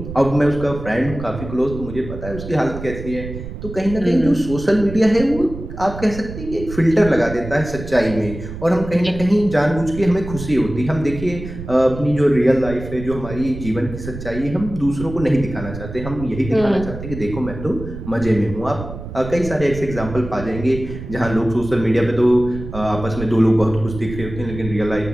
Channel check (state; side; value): noise; right; rumble, 10 dB below the sound